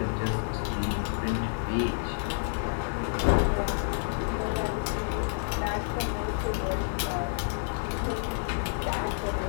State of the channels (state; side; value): silent; right; digital silence